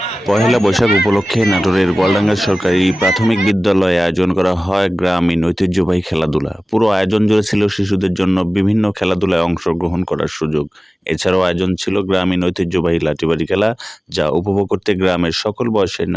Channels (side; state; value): both; normal; correlation 0.97